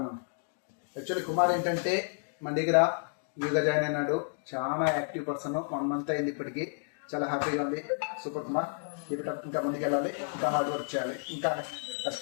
యాక్చువల్లీ కుమార్ ఏంటంటే మన దగ్గర యూగా జాయిన్ అయినాడు. చాలా యాక్టివ్ పర్సన్. 1 month అయింది ఇప్పటికి. చాలా హ్యాపీగా ఉంది. సూపర్ కుమార్. ఇంకా ముందుకు వెళ్ళాలి, ఇంకా హార్డ్ వర్క్ చేయాలి, ఇంకా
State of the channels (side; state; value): right; silent; 57 dB below the other